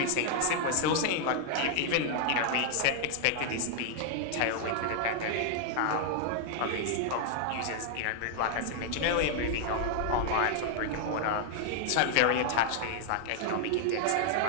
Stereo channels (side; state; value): both; different; correlation 0.00